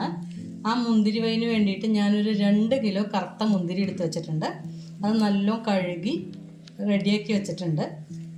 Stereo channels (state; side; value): identical; both; correlation 1.00